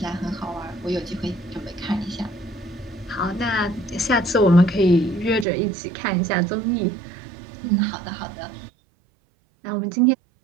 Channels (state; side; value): drops out; left; at 5.5 s